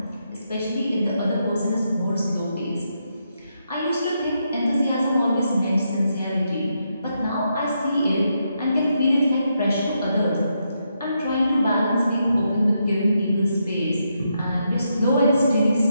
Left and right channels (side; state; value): both; inverted; correlation -0.81